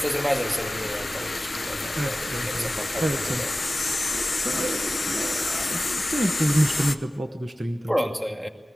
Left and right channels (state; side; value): normal; both; correlation 0.96